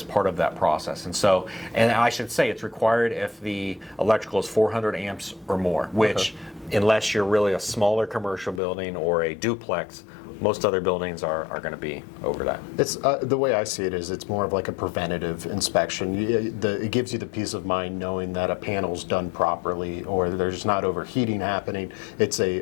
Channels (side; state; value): right; drops out; at 8.6 s